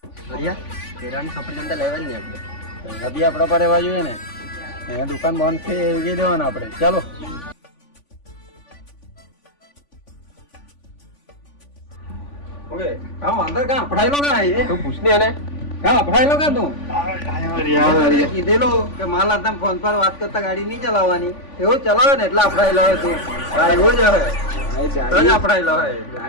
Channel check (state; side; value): late; right; 3.5 ms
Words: હરિયા, કેળાની સફરજન તો લેવાની ને આપણે. બી આપણા પર રહેવા જોઈએ ને. અહીંયા દુકાન બંધ છે એવી દેવાનું આપણે. ચાલો. ઓકે કામ અંદર કાં પડાયેલો કાં એ તું પૂછને એને. કાં પડાયેલો કાં તું કીધેલો કે માલ હાથે ફોન પર વાત કરતા ગાડી નહીં ચલાવવાની. એવું ચલાવે ને એટલે આપડાયેલો હોય તું. એવું જ હોય તો જ આપડાયેલો હોય.